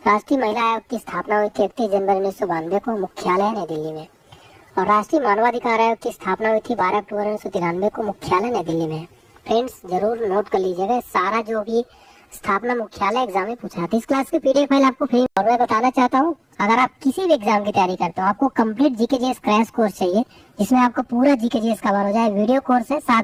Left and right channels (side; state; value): both; identical; correlation 1.00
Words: राष्ट्रीय महिला आयोग की स्थापना हुई थी 31 जनवरी 1992 को, मुख्यालय नई दिल्ली में। और राष्ट्रीय मानवाधिकार आयोग की स्थापना हुई थी 12 अक्टूबर 1993 को, मुख्यालय नई दिल्ली में। फ्रेंड्स जरूर नोट कर लीजिएगा, सारा जो भी स्थापना मुख्यालय एग्जाम में पूछा था। इस क्लास की पीडीएफ फाइल आपको फ्री। और मैं बताना चाहता हूँ, अगर आप किसी भी एग्जाम की तैयारी करते हो, आपको कंप्लीट जीकेजीएस क्रैश कोर्स चाहिए जिसमें आपको पूरा जीकेजीएस कवर हो जाए। वीडियो कोर्स है,